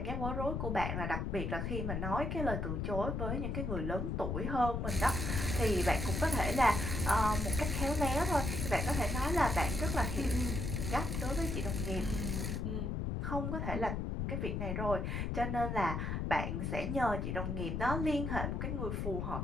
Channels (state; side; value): noise; left; rumble, 1 dB below the sound